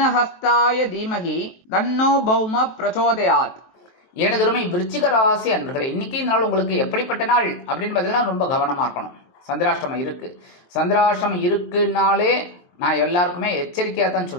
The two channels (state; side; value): late; right; 23 ms